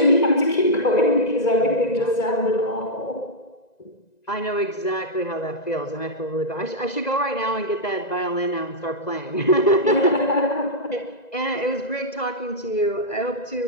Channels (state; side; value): late; right; 1.9 ms